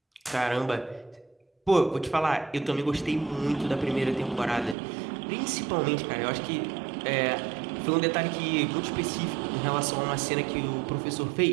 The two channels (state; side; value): drops out; left; at 4.8 s